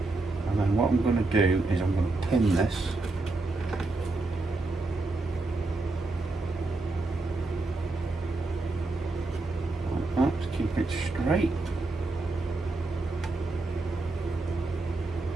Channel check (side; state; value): left; quieter; 3.2 dB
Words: And then what I'm going to do is I'm going to pin this. Like that, to keep it straight.